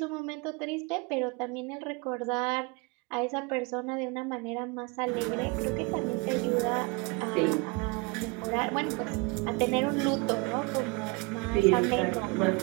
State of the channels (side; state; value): left; quieter; 28.0 dB